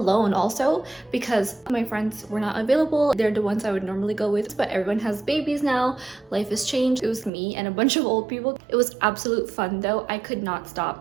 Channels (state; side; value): drops out; left; at 7.3 s